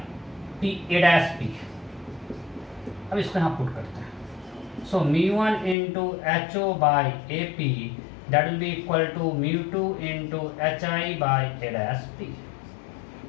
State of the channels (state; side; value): drops out; right; at 5.8 s